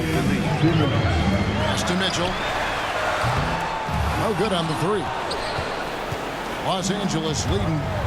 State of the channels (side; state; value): both; identical; correlation 1.00